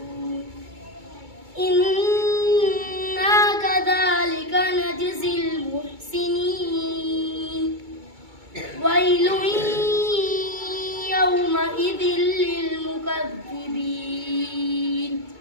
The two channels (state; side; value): late; left; 2.2 ms